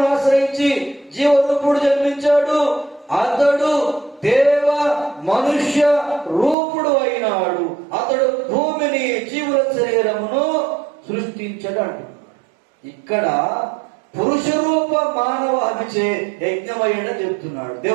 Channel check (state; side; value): drops out; left; at 6.6 s